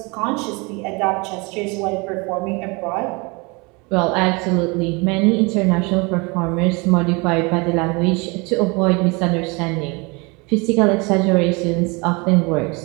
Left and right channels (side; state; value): left; quieter; 28.0 dB